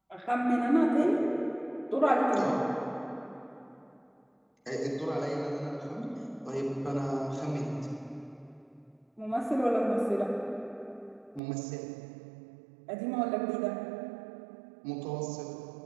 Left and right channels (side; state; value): left; drops out; at 11.4 s